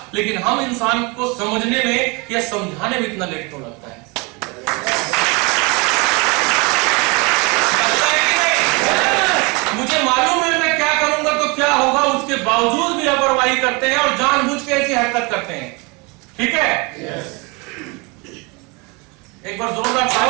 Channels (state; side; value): quieter; left; 28.6 dB